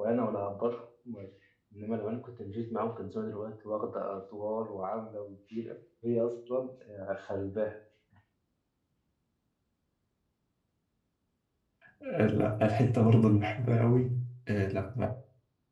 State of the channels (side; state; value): both; identical; correlation 1.00